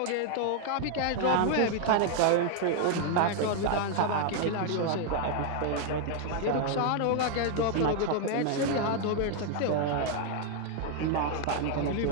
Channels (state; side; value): different; both; correlation 0.00